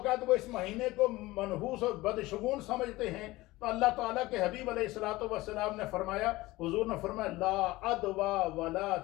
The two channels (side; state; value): right; quieter; 19.3 dB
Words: وہ اس مہینے کو منحوس اور بدشگون سمجھتے ہیں۔ تو اللہ تعالیٰ کے حبیب علیہ الصلوۃ والسلام نے فرمایا، حضور نے فرمایا لا عدوا ولا